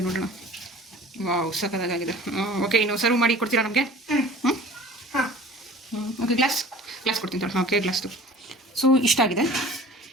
ನೋಡೋಣ. ವಾವ್ ಸಕ್ಕದಾಗಿದೆ. ಓಕೆ ಇನ್ನು ಸರ್ವ್ ಮಾಡಿ ಕೊಡ್ತೀರಾ ನಮಗೆ? ಓಕೆ ಗ್ಲಾಸ್ ಕೊಡ್ತೀನಿ ತಗೊಳ್ಳಿ. ಓಕೆ ಗ್ಲಾಸ್ದು. ಸೊ ಇಷ್ಟ ಆಗಿದೆ.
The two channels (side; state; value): both; normal; correlation 0.44